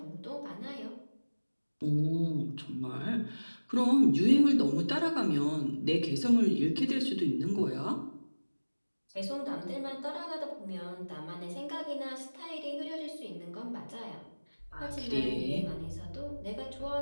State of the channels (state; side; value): inverted; both; correlation -1.00